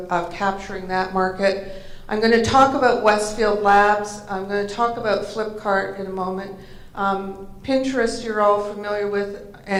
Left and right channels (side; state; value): both; identical; correlation 1.00